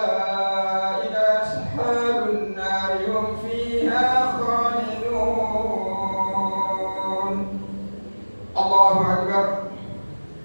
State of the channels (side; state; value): both; inverted; correlation -1.00